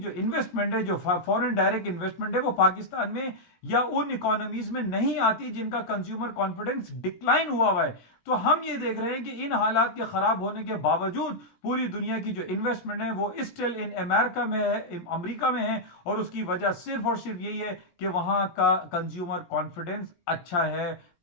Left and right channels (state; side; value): late; right; 17 ms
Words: انویسٹمنٹ ہے، جو فورن ڈائریکٹ انویسٹمنٹ ہے، وہ پاکستان میں یا ان اکانومیز میں نہیں آتی جن کا کنزیومر کانفیڈنس ڈکلائن ہوا ہے۔ تو ہم یہ دیکھ رہے ہیں کہ ان حالات کے خراب ہونے کے باوجود پوری دنیا کی جو انویسٹمنٹ ہے وہ اسٹل ان امریکہ میں ہے، امریکہ میں ہے، اور اس کی وجہ صرف اور صرف یہی ہے کہ وہاں کا کنزیومر کانفیڈنس اچھا ہے،